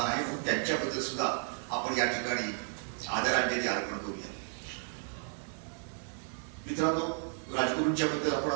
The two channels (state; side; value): silent; left; 55 dB below the other